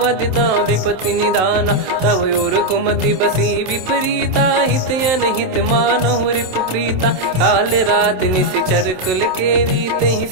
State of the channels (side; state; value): left; late; 27 ms